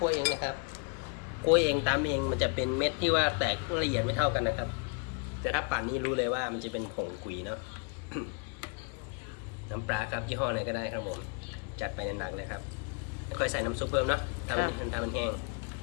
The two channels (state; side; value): quieter; right; 36.1 dB